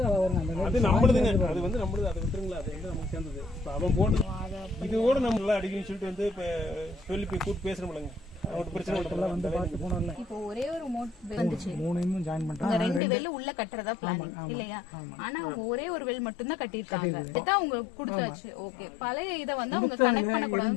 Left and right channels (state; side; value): drops out; right; at 13.0 s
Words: அது நம்மளுதுங்க. அது வந்து நம்மளுது. அதை விட்டுருங்களா, அது வந்து நமக்கு சேர்ந்தது. இப்போ அவன் போட்டு இது கூட நம்ம நல்லா அடிக்கணும்னு சொல்லிட்டு வந்து இப்போ சொல்லி போய் கூப்பிட்டு பேசுறோம்லங்க. அவனுக்கு பிரச்சனை வந்து பார்த்து போனோம்ல. இப்போ ஒரே ஒரு மோட் வந்துச்சு. மூணையும் ஜாயின் பண்ணிட்டாங்க. ரெண்டு வெல் உள்ள கட்டறதா பிளான் இல்லையா? ஆனா அவங்க ஒரே ஒரு வெல் மட்டும் தான் கட்டிருக்காங்க. இதான் அவங்க கொடுத்தாச்சு. ஓகே. பழைய இத வந்து அவங்க கனெக்ட் பண்ண